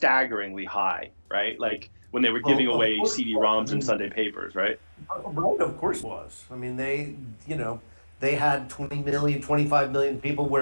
high, right? Like when they were Well, giving of away course, I CD-ROMs and mean, Sunday papers, right? right, of course it was. I mean, they had 20 million, 25 million people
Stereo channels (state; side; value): inverted; both; correlation -1.00